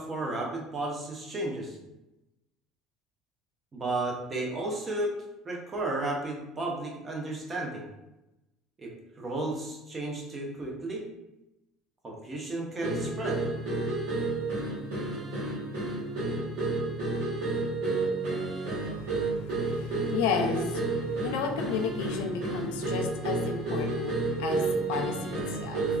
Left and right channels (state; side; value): normal; both; correlation 0.44